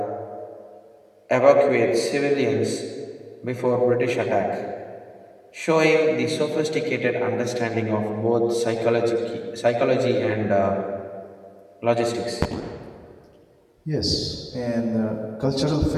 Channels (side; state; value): both; identical; correlation 1.00